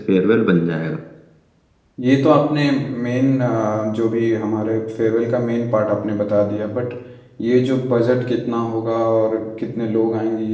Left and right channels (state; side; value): identical; both; correlation 1.00